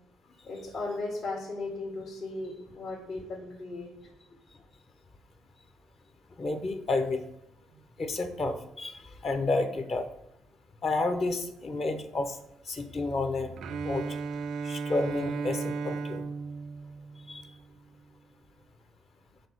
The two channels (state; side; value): normal; both; correlation 0.82